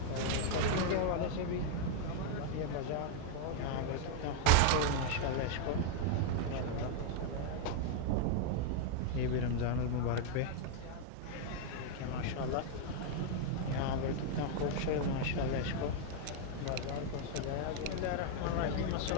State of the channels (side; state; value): both; different; correlation 0.00